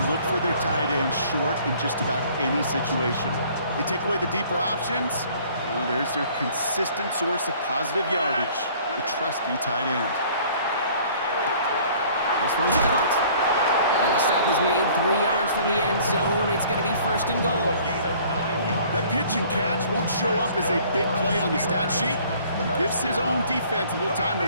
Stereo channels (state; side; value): inverted; both; correlation -0.54